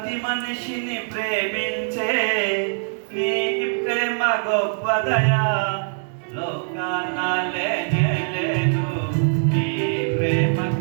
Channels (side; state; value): left; silent; digital silence